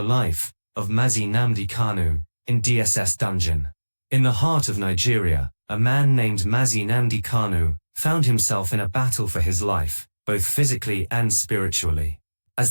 life of Mazi Nnamdi Kanu in DSS Dungeon. In the heart of Nigeria, a man named Mazi Nnamdi Kanu found himself in a battle for his life, both physically and spiritually.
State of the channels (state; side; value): inverted; both; correlation -1.00